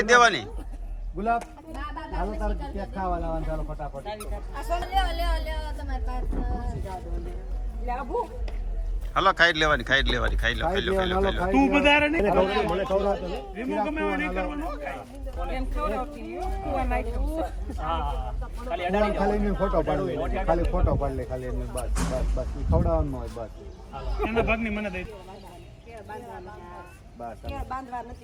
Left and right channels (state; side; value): identical; both; correlation 1.00